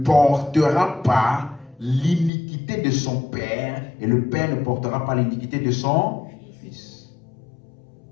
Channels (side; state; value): right; drops out; at 2.3 s